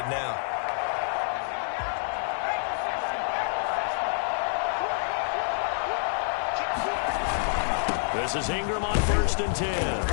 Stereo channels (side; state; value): right; silent; digital silence